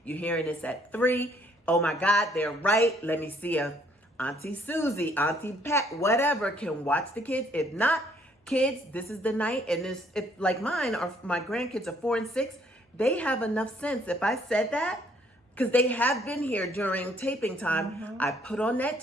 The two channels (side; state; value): both; normal; correlation 0.65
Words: You're hearing this at 3. Oh my God, they're right. Let me see if Auntie Susie, Auntie Pat, whatever, can watch the kids. If not, kids, this is the night. And if like mine or my grandkids are 4 and 6, they have enough sense. If I said that, because they have been here during taping time, I put on that